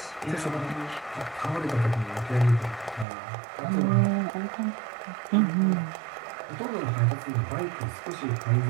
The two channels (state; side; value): drops out; left; at 3.1 s